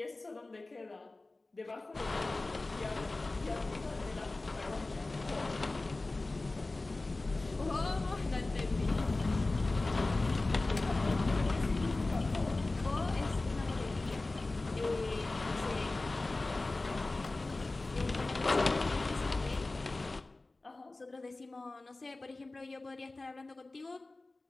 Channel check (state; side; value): quieter; right; 3.1 dB